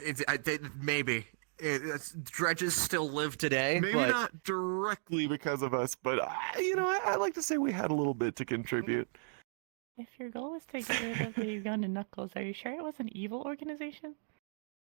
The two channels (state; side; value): silent; left; digital silence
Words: Maybe. Dredges still live today. Maybe but... not directly because of us, but I like to say we had a little bit to contribute. If your goal was to get rid of the Ugandan Knuckles, are you sure it was an evil organization?